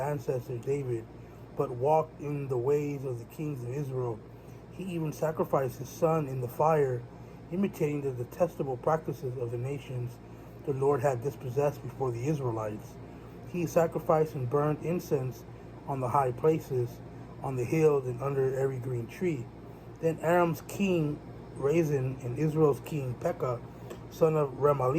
David, but walked in the ways of the kings of Israel. He even sacrificed his son in the fire, imitating the detestable practices of the nations the Lord had dispossessed before the Israelites. He sacrificed and burned incense on the high places, on the hills, and under every green tree. Then Aram's king Rezin and Israel's king Pekah, son of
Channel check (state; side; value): identical; both; correlation 1.00